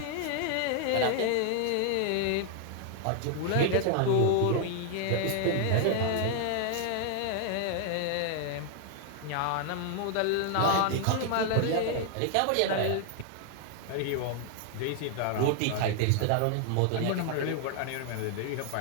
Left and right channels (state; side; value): different; both; correlation 0.00